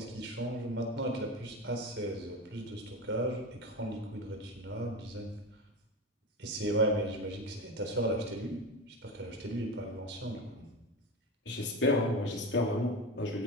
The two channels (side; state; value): both; normal; correlation 0.24